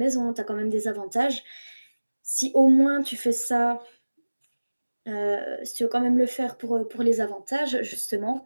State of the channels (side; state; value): both; inverted; correlation -1.00